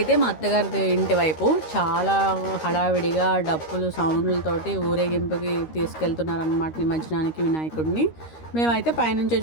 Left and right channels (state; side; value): late; right; 13 ms